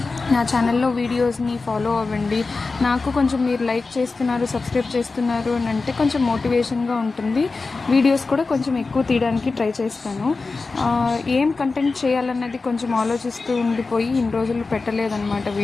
నా ఛానల్లో వీడియోస్ని ఫాలో అవ్వండి. నాకు కొంచెం మీరు లైక్ చేస్తున్నారు, సబ్స్క్రైబ్ చేస్తున్నారు అని అంటే కొంచెం మోటివేషన్గా ఉంటుంది. వీడియోస్ కూడా కొంచెం ఎక్కువ తీయడానికి ట్రై చేస్తాను. ఏం కంటెంట్ చేయాలన్నది కొంచెం ఆలోచిస్తూ ఉండిపోయి ఇన్ని రోజులు పెట్టలేదన్నమాట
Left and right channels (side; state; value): right; quieter; 4.0 dB